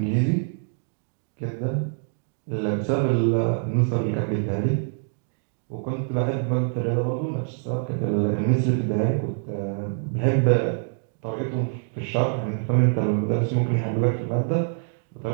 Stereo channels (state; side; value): silent; left; 62 dB below the other